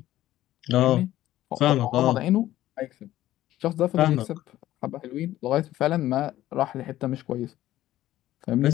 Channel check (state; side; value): quieter; right; 14.3 dB